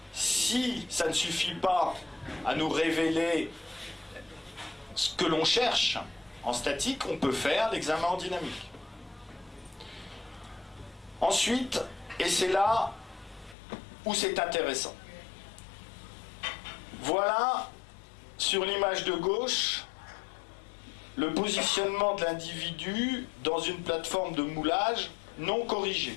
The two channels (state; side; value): drops out; right; at 13.6 s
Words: Si ça ne suffit pas à nous révéler ce que l'on cherche en statique, on peut faire l'examen en dynamique. Ensuite, et c'est là où c'est intéressant. Voilà, sur l'image de gauche, le positionnement de l'individu dans une plateforme de moulage non